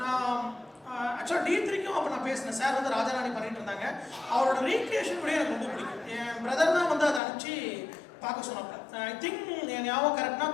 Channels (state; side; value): drops out; right; at 7.2 s